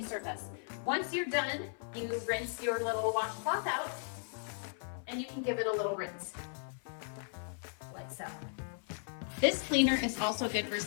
surface. Once you're done, you rinse your little washcloth out and you can give it a little rinse, like so. This cleaner is also good for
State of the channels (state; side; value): silent; right; 53 dB below the other